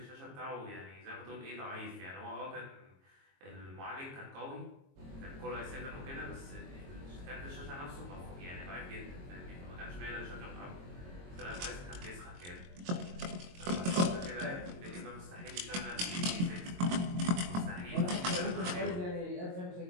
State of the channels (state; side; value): late; left; 22 ms